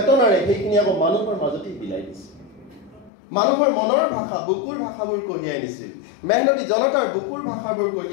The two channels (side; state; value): right; drops out; at 3.1 s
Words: সেইখিনি আকৌ মানুহৰ মাজতেই বিলাই দিছিল। মানুহৰ মনৰ ভাষা বুকুৰ ভাষাবোৰ কঢ়িয়াই আনিছিল, মেহনতি জনতাৰ বুকুৰ ভাষাবোৰ